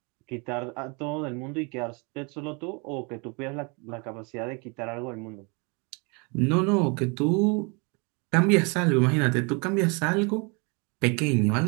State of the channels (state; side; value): quieter; left; 31.6 dB